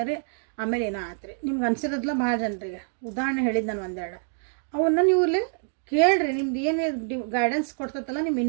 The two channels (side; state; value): left; silent; digital silence